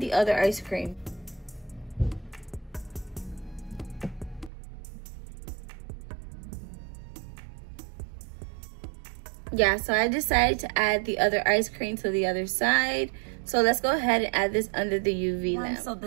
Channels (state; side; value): drops out; left; at 4.5 s